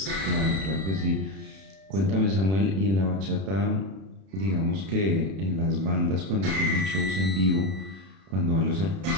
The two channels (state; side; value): late; left; 31 ms